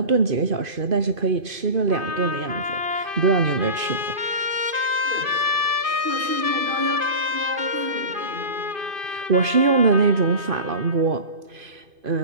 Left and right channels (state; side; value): late; left; 2.5 ms